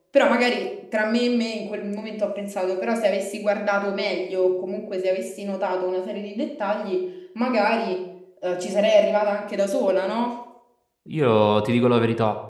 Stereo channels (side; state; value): both; identical; correlation 1.00